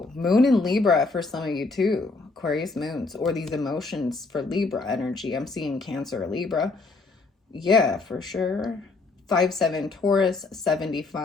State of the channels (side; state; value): right; quieter; 3.7 dB